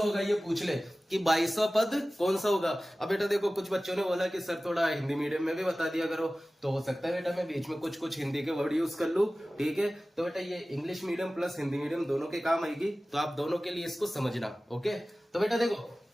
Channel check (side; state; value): both; normal; correlation 0.97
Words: होगा, ये पूछ ले कि 22वां पद कौन सा होगा। अब बेटा देखो, कुछ बच्चों ने बोला कि सर थोड़ा हिंदी मीडियम में भी बता दिया करो, तो हो सकता है बेटा मैं बीच में कुछ कुछ हिंदी के वर्ड यूज कर लूं, ठीक है। तो बेटा ये English medium plus Hindi medium दोनों के काम आएगी, तो आप दोनों के लिए इसको समझना, ओके। तो बेटा देखो,